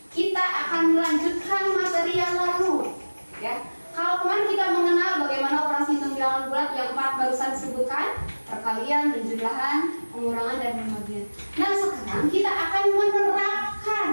kita akan melanjutkan materi yang lalu, ya. Kalau kemarin kita mengenal bagaimana operasi hitung bilangan bulat yang 4 barusan disebutkan, perkalian, penjumlahan, pengurangan, dan pembagian. Nah, sekarang kita akan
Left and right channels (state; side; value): inverted; both; correlation -1.00